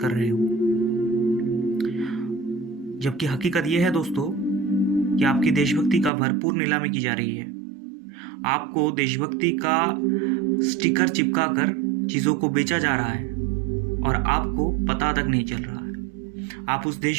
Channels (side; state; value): left; drops out; at 6.1 s